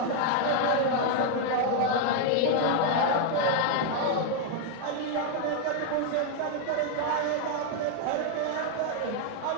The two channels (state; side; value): different; both; correlation 0.00